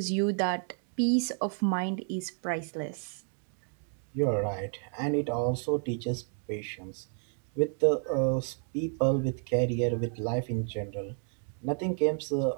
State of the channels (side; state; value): left; silent; 57 dB below the other